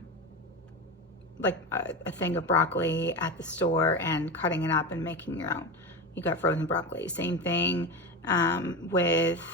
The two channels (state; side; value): normal; both; correlation 0.21